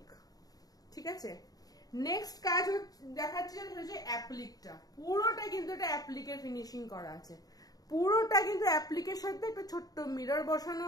ঠিক আছে। নেক্সট কাজ দেখাচ্ছে হচ্ছে অ্যাপ্লিকটা, পুরোটা কিন্তু এটা অ্যাপ্লিকের ফিনিশিং করা আছে, পুরোটা কিন্তু অ্যাপ্লিকের সাথে একটা ছোট্ট মিরর বসানো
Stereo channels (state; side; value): late; right; 0.18 ms